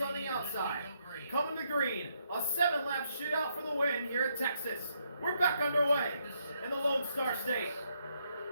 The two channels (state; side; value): inverted; both; correlation -0.76